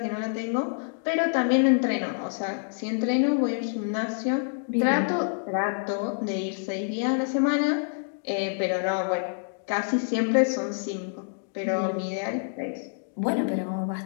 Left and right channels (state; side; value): silent; right; digital silence